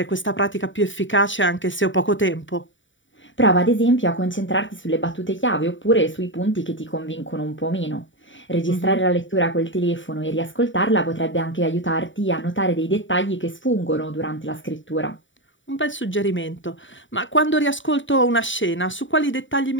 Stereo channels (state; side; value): late; right; 0.55 ms